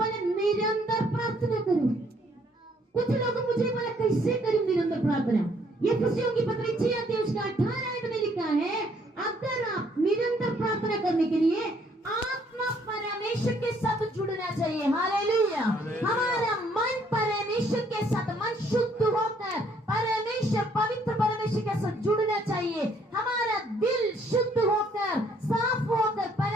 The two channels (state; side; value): normal; both; correlation 0.66